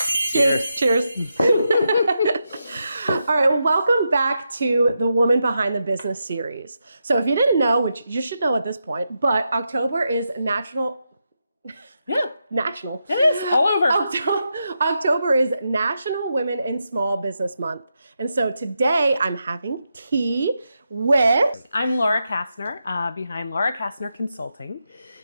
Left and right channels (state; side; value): inverted; both; correlation -0.86